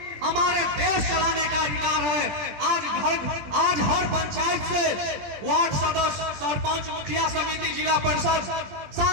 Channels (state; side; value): late; left; 20 ms